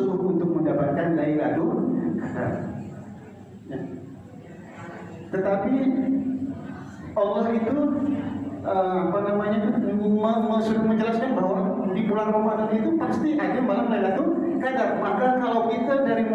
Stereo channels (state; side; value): identical; both; correlation 1.00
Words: untuk mendapatkan Lailatul Qadar. Ya. Tetapi Allah itu sudah menjelaskan bahwa di bulan Ramadan itu pasti ada malam Lailatul Qadar. Maka kalau kita dari